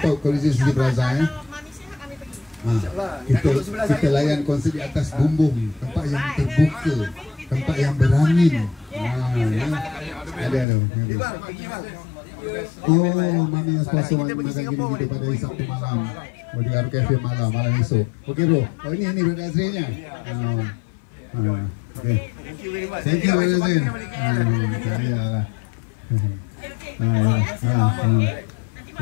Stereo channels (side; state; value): right; drops out; at 10.7 s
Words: Coliseum City Plaza Kalau Mami sihat kami pergi. Kita layan konsert di atas bumbung, tempat yang terbuka, tempat yang berangin. Ada. Pergi bang. Oh, Mami yang sponsor makan gini kita pada Sabtu malam. Di Aro Cafe malam esok. Okey bro. Oh ini Brother Azrinya. Okay. Thank you very much. Iyalah.